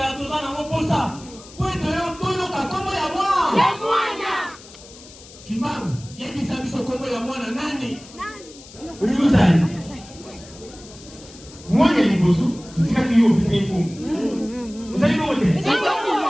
tozana moposa. Pweto yo toyoka kombo ya mwana. Ya mwana. Kimbangu. Yebisa biso kombo ya mwana nani? Uyuzani. Mwana liboso. Tutika kiyo bisa ikungu. Uzali bote.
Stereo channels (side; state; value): left; noise; hiss, 20 dB below the sound